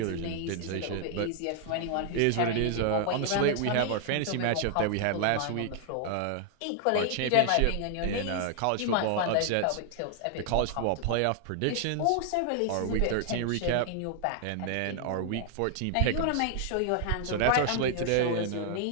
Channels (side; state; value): both; different; correlation 0.00